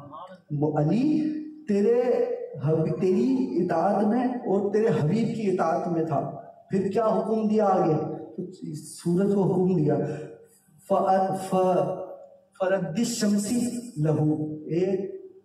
علی تیری اطاعت میں اور تیرے حبیب کی اطاعت میں تھا۔ پھر کیا حکم دیا آگے؟ سورج کو حکم دیا، فرد الشمس لہو، ایک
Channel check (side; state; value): both; identical; correlation 1.00